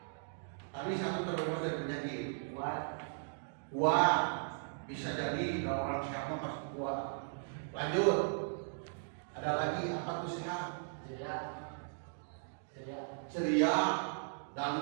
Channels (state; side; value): silent; left; digital silence